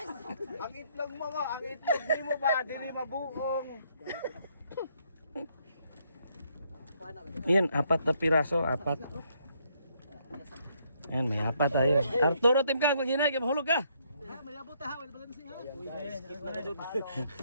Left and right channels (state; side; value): inverted; both; correlation -0.71